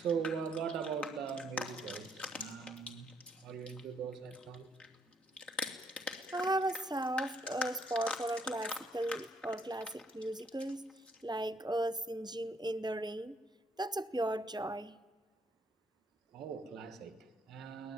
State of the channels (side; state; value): both; normal; correlation 0.69